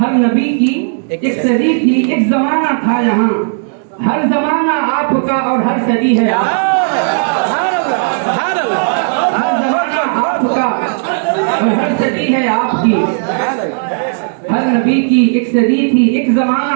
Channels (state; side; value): silent; left; digital silence